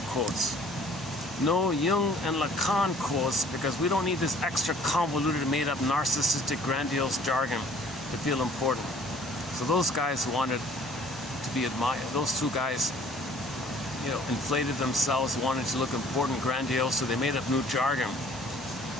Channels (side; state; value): both; normal; correlation 0.54